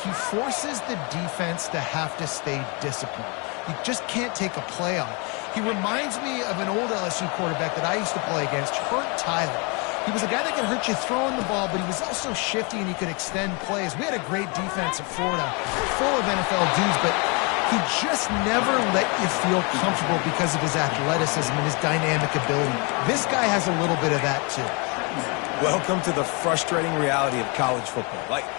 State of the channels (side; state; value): right; quieter; 31.6 dB